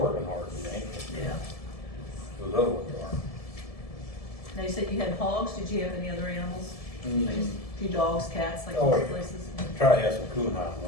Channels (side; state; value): right; late; 1.7 ms